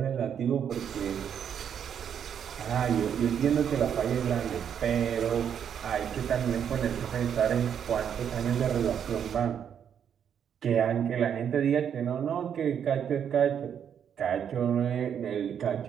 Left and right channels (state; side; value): quieter; left; 8.4 dB